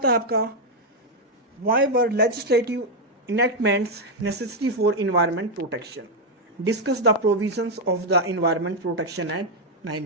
है आपका why were legislative enactments necessary for environment protection, discuss the provisions of the environment protection act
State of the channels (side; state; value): both; normal; correlation 0.01